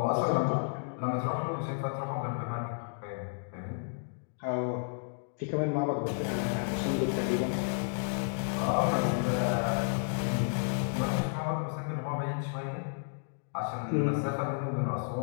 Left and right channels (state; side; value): silent; right; digital silence